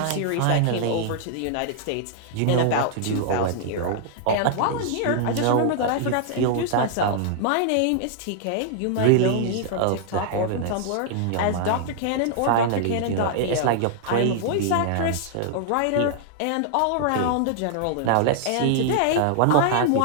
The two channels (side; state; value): both; different; correlation -0.01